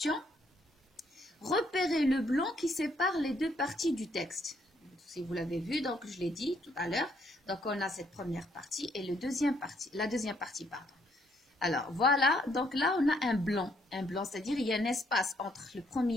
Repérez le blanc qui sépare les deux parties du texte. Si vous l'avez vu, donc je l'ai dit tout à l'heure. Donc, on a cette première partie et la deuxième partie, pardon. Alors, voilà. Donc là, on a un blanc, c'est-à-dire il y a un espace entre le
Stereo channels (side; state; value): both; normal; correlation 0.70